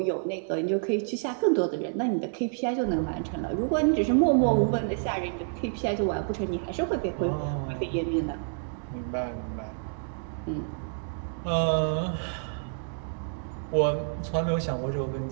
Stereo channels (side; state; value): left; silent; digital silence